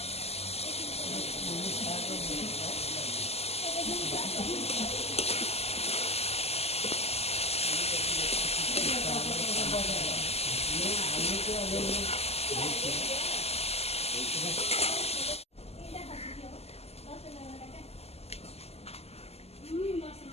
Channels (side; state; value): right; late; 0.30 ms